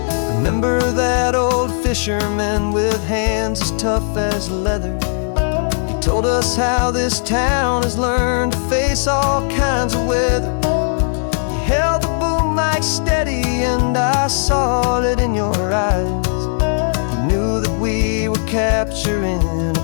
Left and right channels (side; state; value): right; silent; digital silence